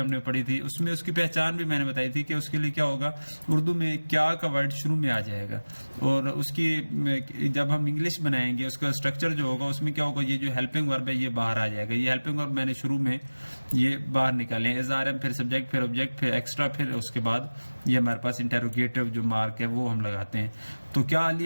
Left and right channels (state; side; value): inverted; both; correlation -1.00